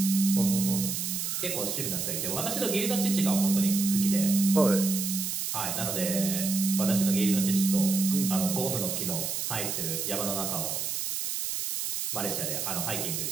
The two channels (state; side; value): noise; right; hiss, 2 dB below the sound